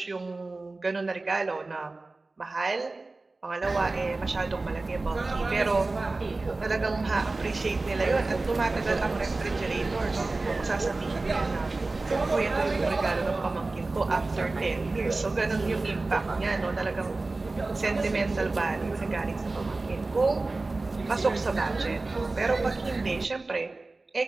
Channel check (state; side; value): quieter; left; 3.3 dB